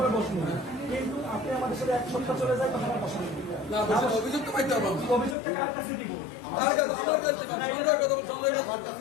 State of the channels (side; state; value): right; drops out; at 5.4 s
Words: বসবো, কিন্তু আপনি আমাদের সাথে 1 সপ্তাহ চলে যায় তখন আর বসবেন। অভিযোগটা কার কাছে দিব?